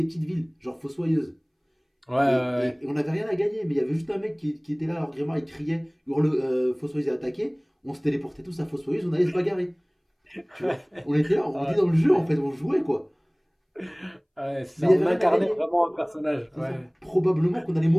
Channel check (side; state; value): both; identical; correlation 1.00